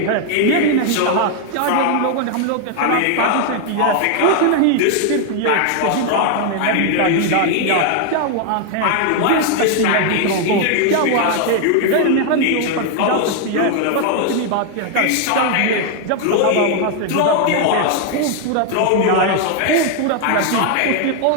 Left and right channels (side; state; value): both; different; correlation 0.00